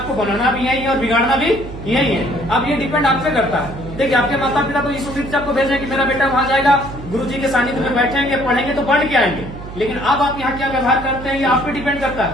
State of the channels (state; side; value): noise; right; hum, 12 dB below the sound